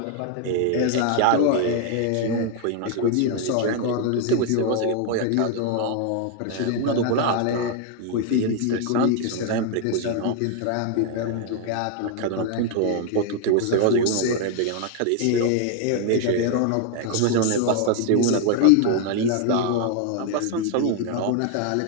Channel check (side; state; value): both; different; correlation 0.00